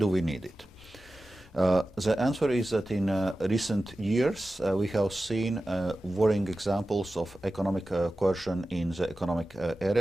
we need it? The answer is that in recent years we have seen worrying examples of economic coercion in the economic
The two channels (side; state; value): both; normal; correlation 0.94